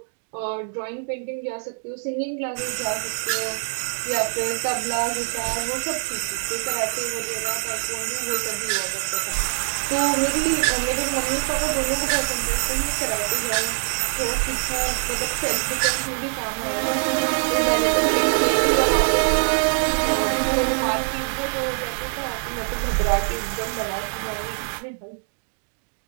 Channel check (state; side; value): silent; left; digital silence